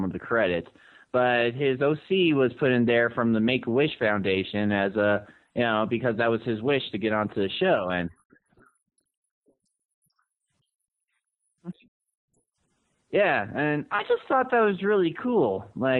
the credits, but his OC was put in there from the Make-A-Wish Foundation as because that was his wish to get onto the show. I guessed that it was a Make-A-Wish thing, but I didn't know. Interesting. Yeah, and I just thought that was really cool.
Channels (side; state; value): both; identical; correlation 1.00